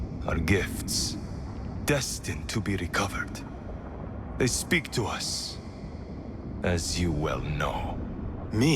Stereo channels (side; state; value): both; identical; correlation 1.00